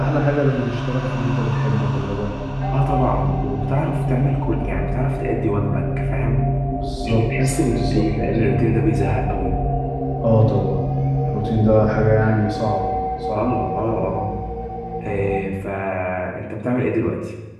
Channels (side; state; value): both; identical; correlation 1.00